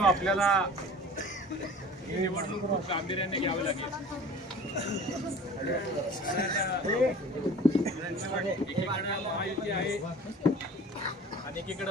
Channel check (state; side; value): normal; both; correlation 0.43